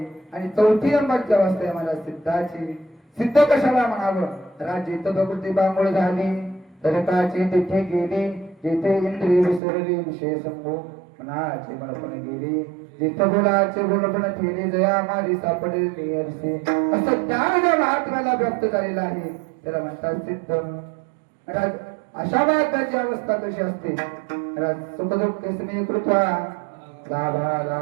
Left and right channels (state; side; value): drops out; left; at 9.6 s